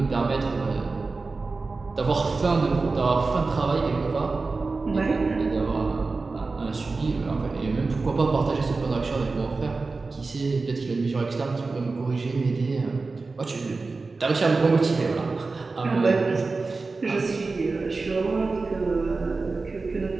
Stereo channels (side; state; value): left; quieter; 3.9 dB